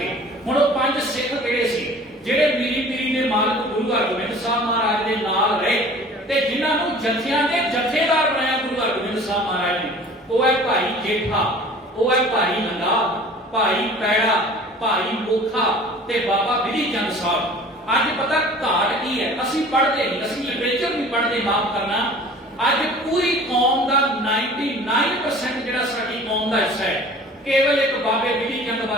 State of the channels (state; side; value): normal; both; correlation 0.46